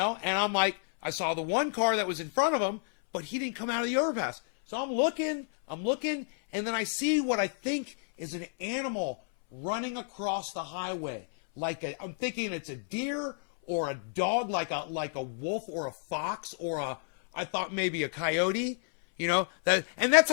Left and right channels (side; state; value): right; silent; 58 dB below the other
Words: And I'm like, I saw the one car that was in front of him, but he didn't come out of the overpass. So I'm looking, and then I see what I think is an animal running across the highway. I'm thinking it's a deer or a dog, like a wolf or a fox or I thought maybe a coyote, you know? And that's